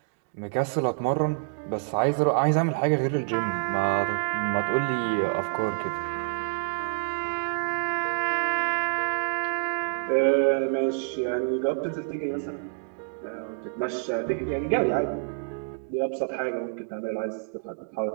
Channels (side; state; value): left; silent; digital silence